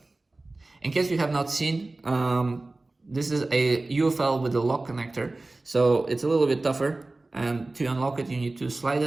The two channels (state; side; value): quieter; left; 3.1 dB